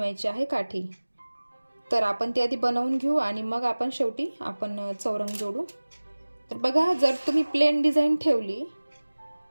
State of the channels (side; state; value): both; inverted; correlation -1.00